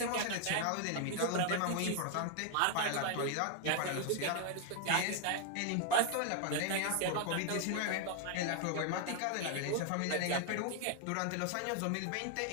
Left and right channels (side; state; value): both; different; correlation 0.00